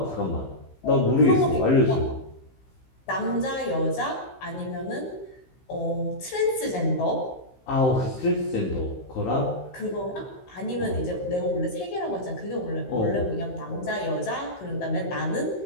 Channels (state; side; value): late; right; 15 ms